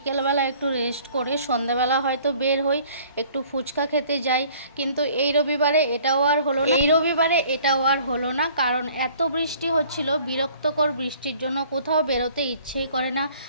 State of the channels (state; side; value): inverted; both; correlation -0.54